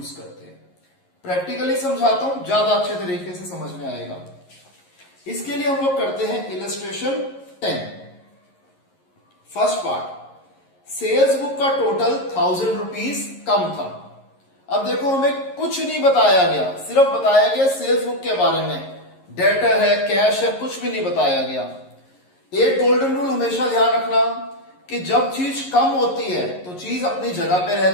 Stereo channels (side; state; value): right; late; 11 ms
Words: करते हैं। प्रैक्टिकली समझाता हूं, ज्यादा अच्छे तरीके से समझ में आएगा। इसके लिए हम लोग करते हैं illustration 10। First part, sales book का टोटल 1000 रुपीज कम था। अब देखो, हमें कुछ नहीं बताया गया, सिर्फ बताया गया सेल्स बुक के बारे में, डेटर है, कैश है, कुछ भी नहीं बताया गया। एक गोल्डन रूल हमेशा ध्यान रखना कि जब चीज कम होती है तो चीज अपनी जगह पे